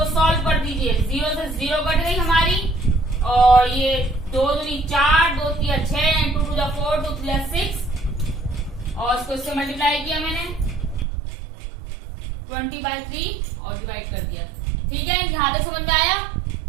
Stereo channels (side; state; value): left; drops out; at 11.1 s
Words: सॉल्व कर दीजिए, 0 से 0 कट गई हमारी, और ये 2 दूनी 4, 2 तिया 6, 2 टू 4, 2 3 6, और इसको इससे मल्टीप्लाई किया मैंने 20/3 और डिवाइड कर दिया, ठीक है। यहां तक समझ में आया।